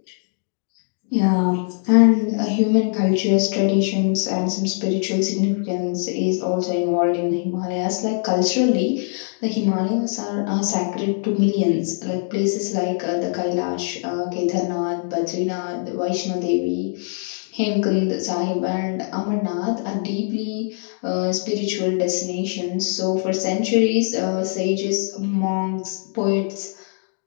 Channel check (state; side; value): silent; right; digital silence